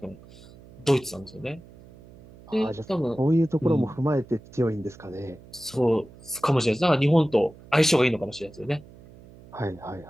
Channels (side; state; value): right; noise; hum, 21 dB below the sound